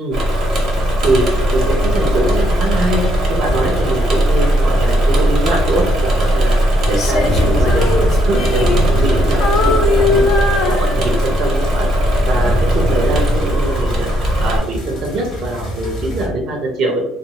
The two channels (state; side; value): normal; both; correlation 0.74